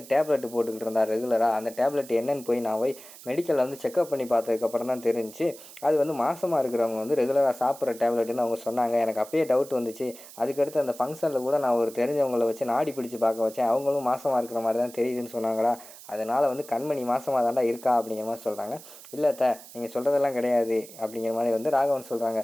டேப்லெட் போட்டுக்கிட்டு இருந்தா ரெகுலராக. அந்த டேப்லெட் என்னன்னு போய் நான் போய் மெடிக்கலில் வந்து செக்அப் பண்ணி பார்த்ததுக்கப்புறம் தான் தெரிஞ்சு அது வந்து மாசமாக இருக்கிறவங்க வந்து ரெகுலராக சாப்பிட்ற டேப்லெட்டுன்னு அவங்க சொன்னாங்க. எனக்கு அப்பயே டவுட் வந்துச்சு. அதுக்கடுத்து அந்த ஃபங்க்ஷனில் கூட நான் ஒரு தெரிஞ்சவங்களை வச்சு நாடி பிடிச்சி பார்க்க வச்சேன். அவங்களும் மாசமாக இருக்கிற மாதிரி தான் தெரியுதுன்னு சொன்னாங்களா. அதனால் வந்து கண்மணி மாசமாக தாண்டா இருக்கா அப்படிங்கிற மாதிரி சொல்கிறாங்க. இல்லை த, நீங்கள் சொல்கிறதெல்லாம் கிடையாது அப்படிங்கிற மாதிரி வந்து ராகவன் சொல்கிறாங்க.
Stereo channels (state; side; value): noise; right; hiss, 18 dB below the sound